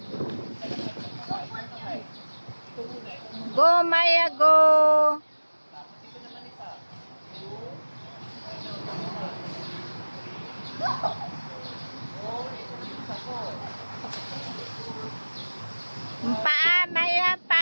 Go, Maya, go! Paa, Maya, pa!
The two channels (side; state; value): both; inverted; correlation -1.00